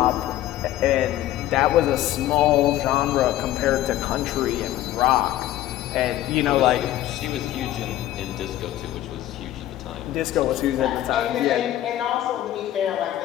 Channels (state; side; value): quieter; right; 13.6 dB